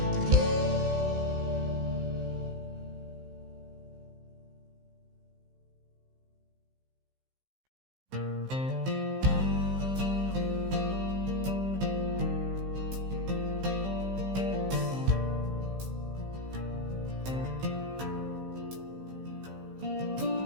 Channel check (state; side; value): late; left; 15 ms